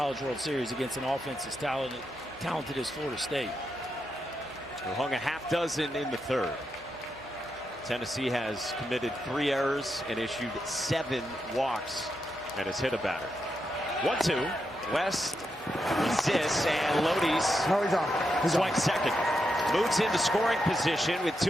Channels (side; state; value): both; normal; correlation 0.84